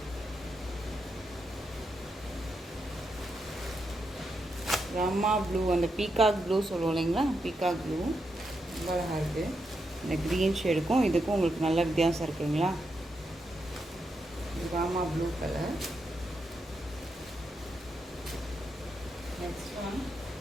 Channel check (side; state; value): both; normal; correlation 0.84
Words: ரம்மா ப்ளூ, அந்த பீகாக் ப்ளூ சொல்லுவோம் இல்லைங்களா, பீகாக் ப்ளூ ரொம்ப அழகாக இருக்குது. இந்த க்ரீன் ஷேடுக்கும் இதுக்கும் உங்களுக்கு நல்ல வித்தியாசம் இருக்குங்களா. Rama blue colour. Next one